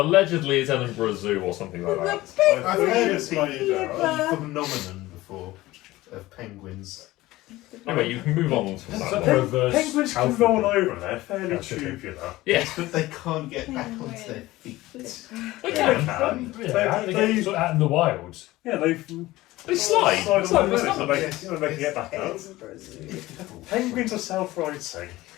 it's Edinburgh Zoo or something like that. I've I've heard heard of the phenomenon before of penguins. Anyway, you can move on to Is that that one. reverse Penguins can alphabet? roll over, they're fairly That's okay. tubular. Yes, But they can't get back onto their feet. they Yeah, can. Yeah, how do they get out in the wild? Yeah, they They slide. slide It's on like the it's limit, not- so they can get back up. Penguins are self-righting.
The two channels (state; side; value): quieter; right; 17.9 dB